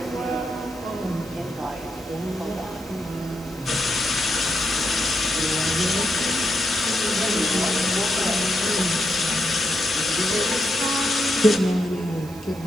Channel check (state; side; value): noise; right; hiss, 21 dB below the sound